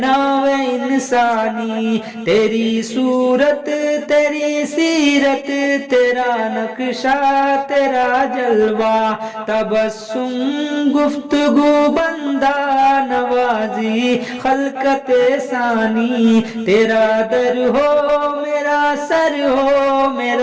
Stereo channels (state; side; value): identical; both; correlation 1.00